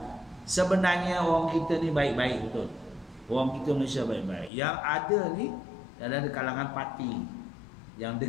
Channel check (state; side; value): drops out; right; at 4.5 s